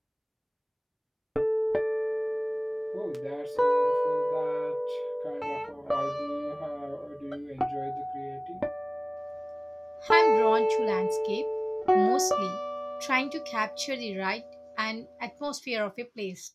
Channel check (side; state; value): both; identical; correlation 1.00